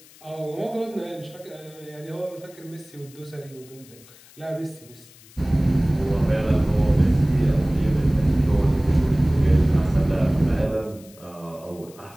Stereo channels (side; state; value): left; noise; hiss, 24 dB below the sound